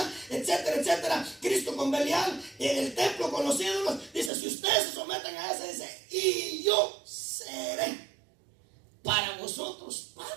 etcétera, etcétera. Cristo con Belial, el templo con los ídolos. Dice, si ustedes se someten a eso, dice, y yo seré para vosotros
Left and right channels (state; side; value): drops out; left; at 4.3 s